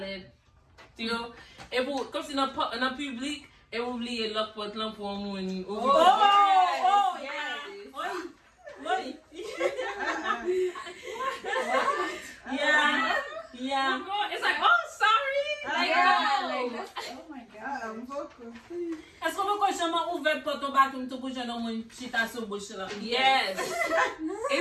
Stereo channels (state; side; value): identical; both; correlation 1.00